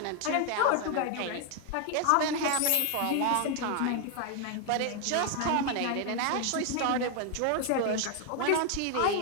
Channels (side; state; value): both; different; correlation 0.01